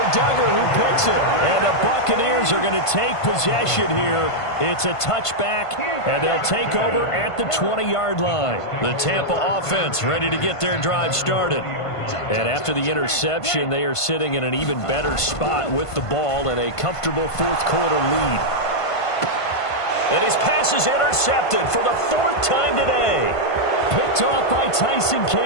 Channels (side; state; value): right; late; 1.5 ms